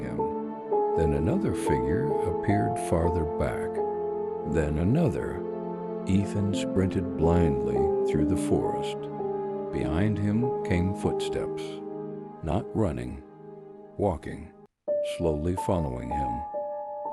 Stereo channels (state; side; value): identical; both; correlation 1.00